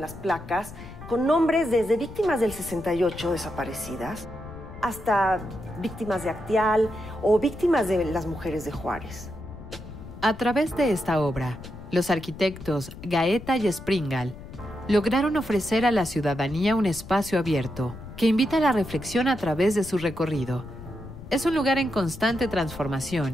las placas con nombres desde víctimas del 68 desaparecidas hasta víctimas de Acteal o víctimas de las mujeres de Juárez. A través de esta obra, los arquitectos Gaeta y Springal lograron ofrecer a la ciudadanía un espacio abierto que invita a la reflexión a través de su recorrido. Es un lugar en constante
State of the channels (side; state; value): left; noise; rumble, 14 dB below the sound